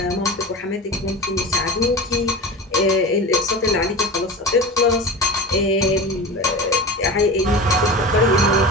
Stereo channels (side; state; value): both; normal; correlation 0.30